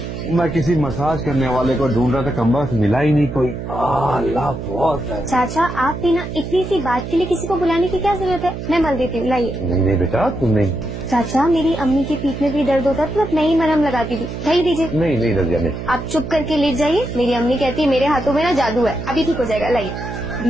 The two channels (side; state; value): right; noise; hum, 7 dB below the sound